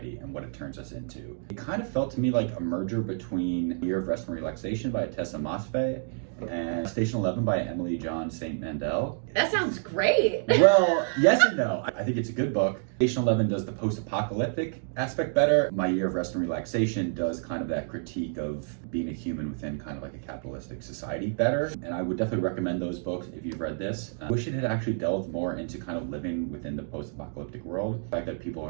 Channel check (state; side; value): silent; left; digital silence